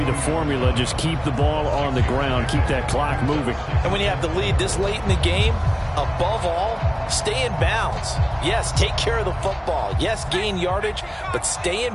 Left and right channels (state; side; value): identical; both; correlation 1.00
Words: the formula. Just keep the ball on the ground. Keep that clock moving. And when you have the lead this late in the game, above all, stay in bounds. Yes, take care of the football. Yes, gain yardage, but stay in